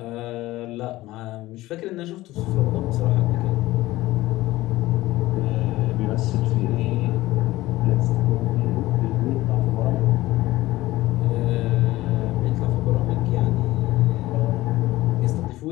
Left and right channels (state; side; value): quieter; right; 17.4 dB